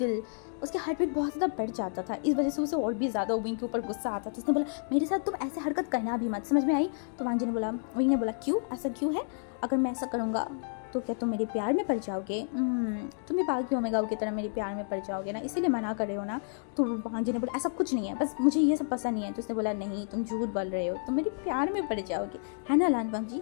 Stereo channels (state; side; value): silent; right; digital silence